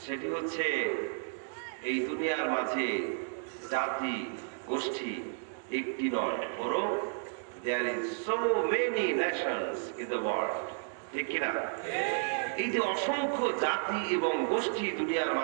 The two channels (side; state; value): left; silent; digital silence